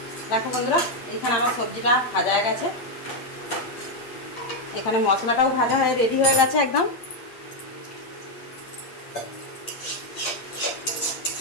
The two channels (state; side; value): late; right; 8.7 ms